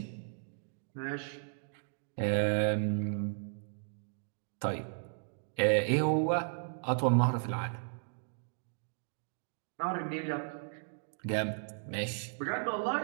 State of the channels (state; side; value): silent; left; digital silence